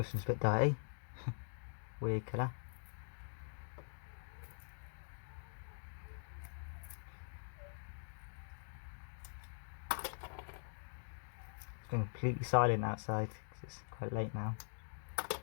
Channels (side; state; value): right; silent; digital silence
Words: one's a bit dirty. Weird colour. It's been completely silent outside because it's quite late now to